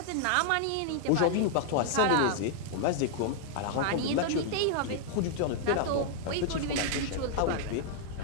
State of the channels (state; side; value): different; both; correlation -0.01